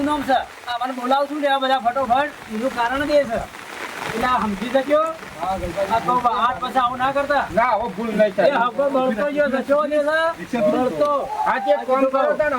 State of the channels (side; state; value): both; identical; correlation 1.00